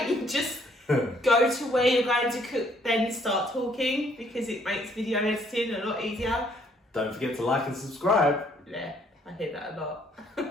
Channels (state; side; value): normal; both; correlation 0.65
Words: don't you just go to where you're going to cook, then start talking? Because it makes video editing a lot easier. Don't forget to like and subscribe. Yeah, I hear that a lot.